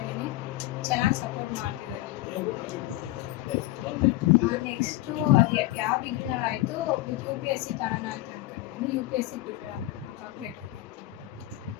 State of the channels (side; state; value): right; quieter; 17.0 dB